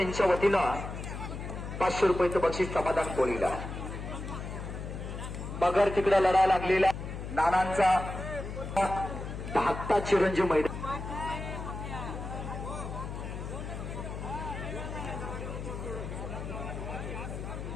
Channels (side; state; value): left; noise; hum, 7 dB below the sound